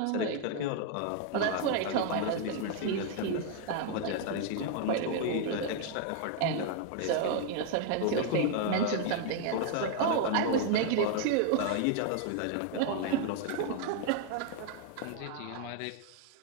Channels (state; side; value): different; both; correlation 0.00